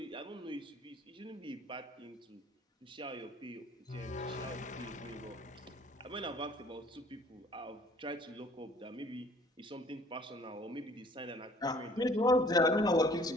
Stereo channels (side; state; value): both; normal; correlation 0.55